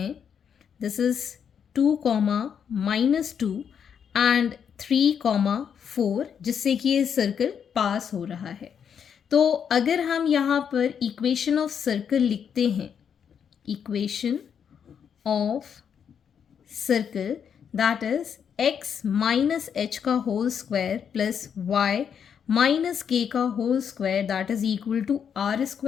This is 2, -2 and 3, 4 जिससे कि ये सर्कल पास हो रहा है. तो अगर हम यहाँ पर इक्वेशन ऑफ सर्कल लिखते हैं, equation of circle that is x minus H का whole square plus y minus K का whole square that is equal to R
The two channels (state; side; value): quieter; right; 7.7 dB